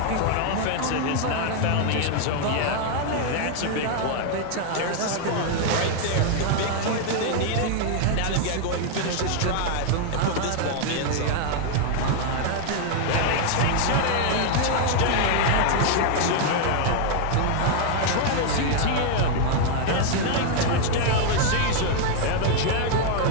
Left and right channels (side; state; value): both; different; correlation 0.00